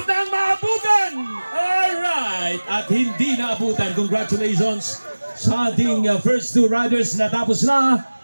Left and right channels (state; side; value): inverted; both; correlation -1.00